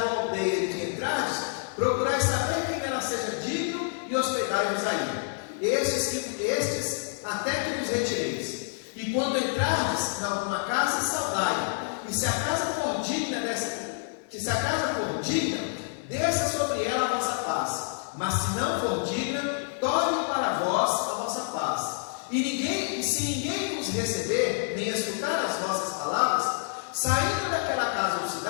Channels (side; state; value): right; silent; digital silence